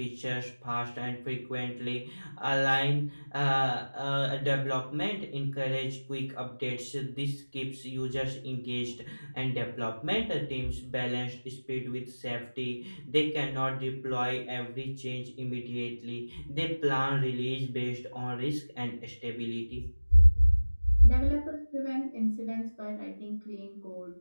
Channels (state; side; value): inverted; both; correlation -1.00